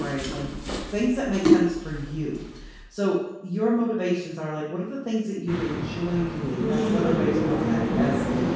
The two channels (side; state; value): both; identical; correlation 1.00